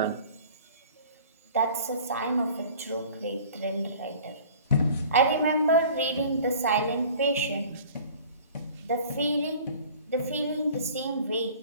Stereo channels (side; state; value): both; inverted; correlation -0.46